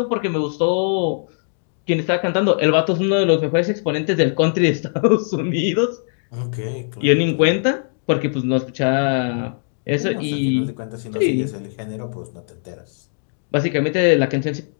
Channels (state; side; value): silent; right; digital silence